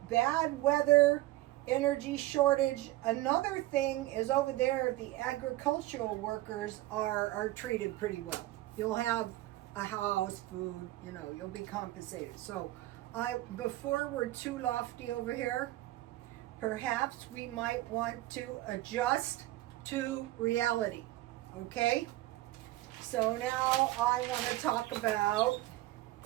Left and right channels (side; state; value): left; quieter; 17.0 dB